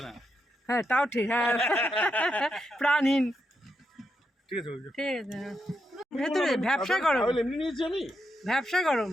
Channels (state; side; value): normal; both; correlation 0.83